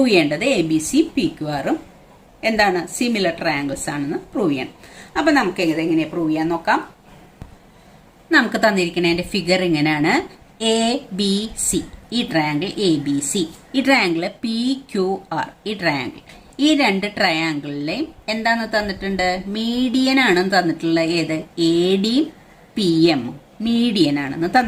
ചെയ്യേണ്ടത് ABC PQRും എന്താണ്? സിമിലർ ട്രയാങ്കിൾസ് ആണെന്ന് പ്രൂവ് ചെയ്യണം. അപ്പൊ നമുക്ക് എങ്ങനെയാ പ്രൂവ് ചെയ്യാൻ നോക്കാം. നമുക്ക് തന്നിരിക്കുന്നതിന്റെ ഫിഗർ ഇങ്ങനെയാണ്. ABC ഈ ട്രയാങ്കിൾ ABC, ഈ ട്രയാങ്കിൾ PQR ഈ ട്രയാങ്കിൾ. ഈ രണ്ട് ട്രയാങ്കിളിലെയും എന്താന്ന് തന്നിട്ടുണ്ട്? മീഡിയൻ ആണെന്ന് തന്നിട്ടുള്ളത്. ഏത്? ADയും PM മീഡിയൻ ആണെന്ന്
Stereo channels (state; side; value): identical; both; correlation 1.00